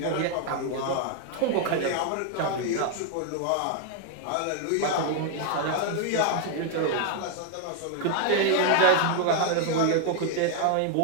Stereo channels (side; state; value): both; different; correlation 0.00